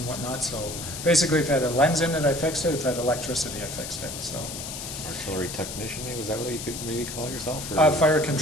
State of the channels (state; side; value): noise; left; hiss, 8 dB below the sound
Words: whatnot. So basically if it had a lens in it, I fixed it. If it had electricity, I fixed it. So Artillery technician, maybe? Was that what you could maybe call yourself? Or? Fire